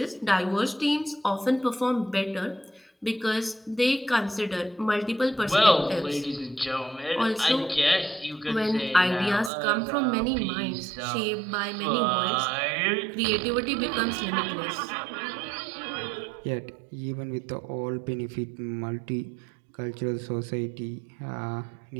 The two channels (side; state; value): left; drops out; at 9.5 s